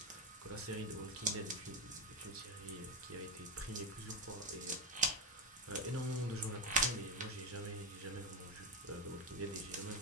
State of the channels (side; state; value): both; normal; correlation 0.11